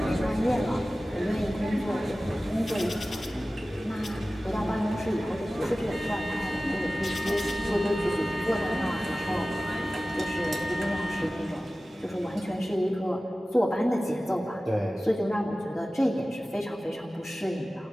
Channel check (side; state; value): both; normal; correlation 0.96